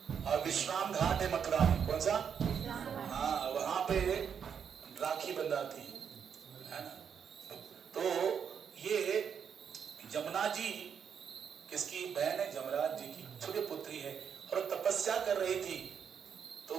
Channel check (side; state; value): left; quieter; 7.4 dB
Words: और विश्राम घाट है मथुरा में। कौन सा? हाँ, वहां पे राखी बंधाती है ना। तो ये यमुना जी किसकी बहन है? यमराज जी की छोटी पुत्री है। और तपस्या कर रही थी, तो